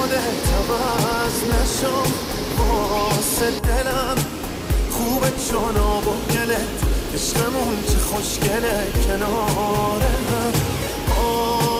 عوض نشو. واسه دلم خوبه چون آب و گلت، عشقمون چه خوشگله کنار هم.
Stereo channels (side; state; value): both; identical; correlation 1.00